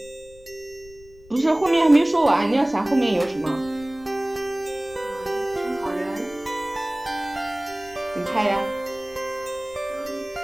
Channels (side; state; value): left; noise; rumble, 23 dB below the sound